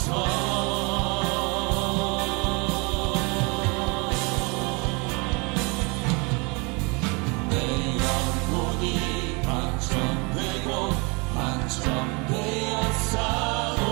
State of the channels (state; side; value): quieter; left; 30.0 dB